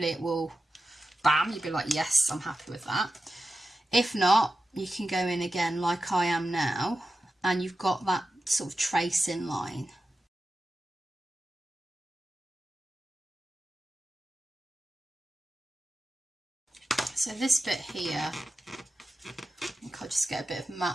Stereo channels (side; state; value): both; normal; correlation 0.92